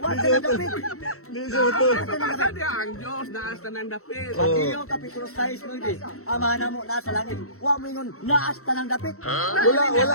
na dapit. Hindi siya matuwala. Basta niya, ang Diyos laas ng dapit. Mateo Kapitulo 6, Lodi. Amahan na mo nasa langit. Huwag mo yun, naas ka ng dapit.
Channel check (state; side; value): late; right; 0.63 ms